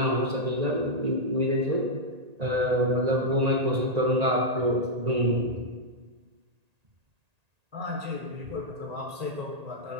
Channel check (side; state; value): left; late; 1.8 ms